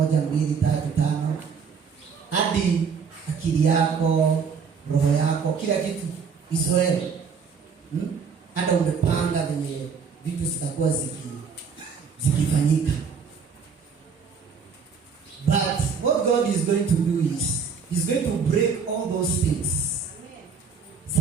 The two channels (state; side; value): quieter; left; 5.9 dB